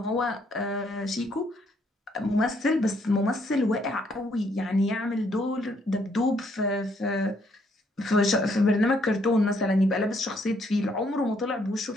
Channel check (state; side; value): normal; both; correlation 0.70